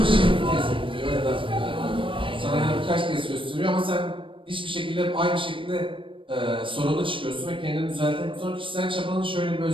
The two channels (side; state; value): left; late; 0.25 ms